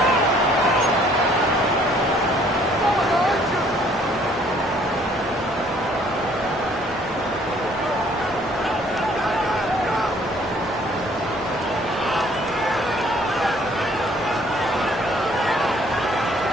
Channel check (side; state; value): both; normal; correlation 0.60